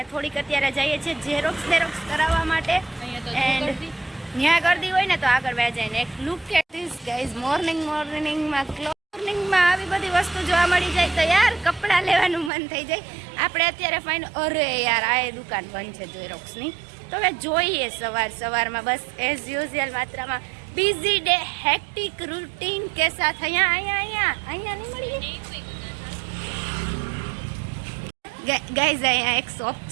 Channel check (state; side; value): drops out; left; at 12.5 s